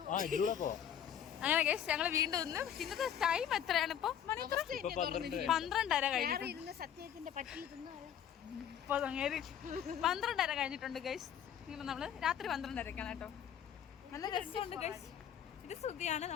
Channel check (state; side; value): quieter; right; 9.3 dB